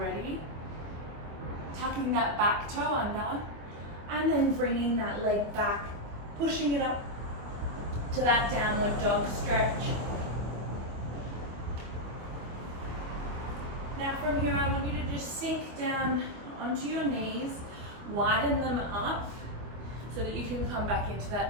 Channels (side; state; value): left; late; 25 ms